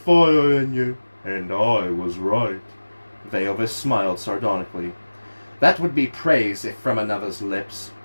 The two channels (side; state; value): both; inverted; correlation -1.00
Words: in you, and I was right." Veovis smiled sardonically. "That would be praise if from another's lips."